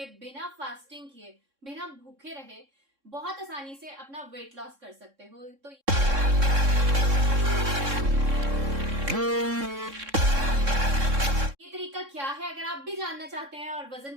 बिना फास्टिंग किए, बिना भूखे रहे बहुत आसानी से अपना वेट लॉस कर सकते हो। तो ये तरीका क्या है, अगर आप भी जानना चाहते हैं और वजन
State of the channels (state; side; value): late; left; 3.6 ms